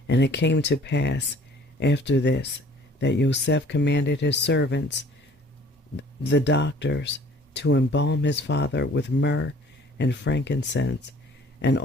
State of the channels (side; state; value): both; normal; correlation 0.52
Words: And it came to pass after this that Yosef commanded his servants, the doctors, to embalm his father with myrrh and frankincense and